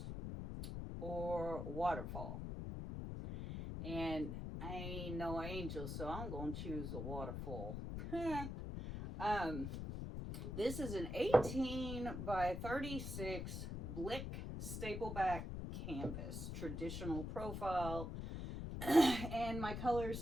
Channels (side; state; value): left; noise; rumble, 5 dB below the sound